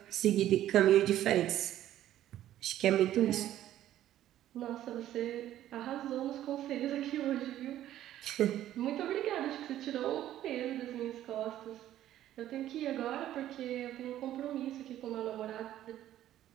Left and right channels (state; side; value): quieter; left; 12.7 dB